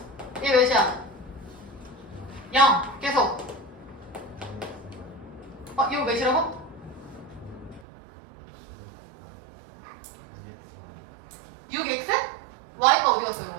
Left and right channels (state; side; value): drops out; left; at 7.8 s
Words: 얘 몇이야? 0 계속. 이거 몇이라고? 6x? y가 어디 갔어